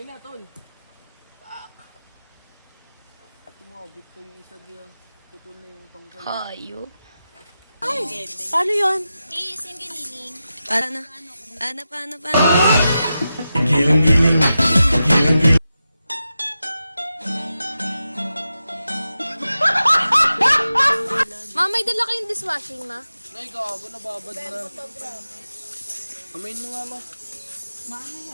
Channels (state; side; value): inverted; both; correlation -0.90